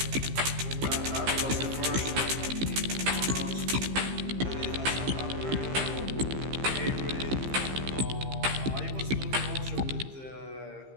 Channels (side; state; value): left; late; 15 ms